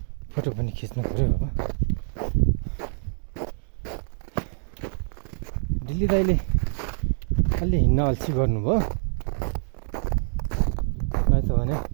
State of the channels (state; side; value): silent; left; digital silence